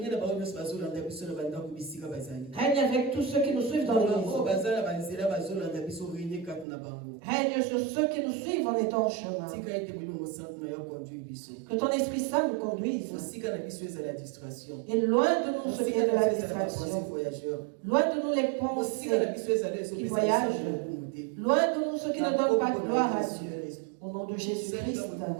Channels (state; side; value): drops out; left; at 6.7 s